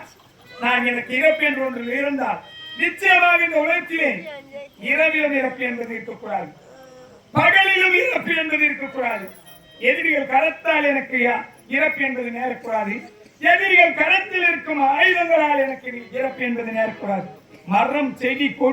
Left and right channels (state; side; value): identical; both; correlation 1.00